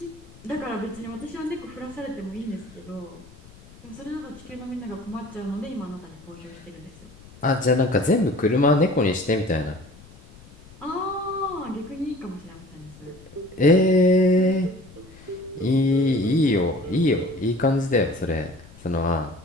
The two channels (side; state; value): left; noise; rumble, 22 dB below the sound